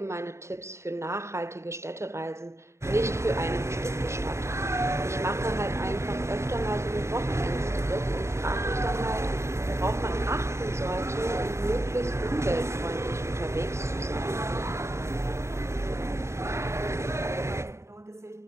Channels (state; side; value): late; left; 0.13 ms